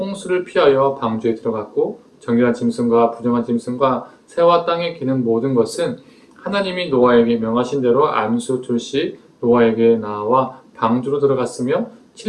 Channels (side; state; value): both; identical; correlation 1.00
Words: 피하여 방주에 들어갔고 정결한 짐승과 부정한 짐승과 새와 땅에 기는 모든 것은 하나님이 노아에게 명하신 대로 암수 2씩 노아에게 나와 방주로 들어갔으며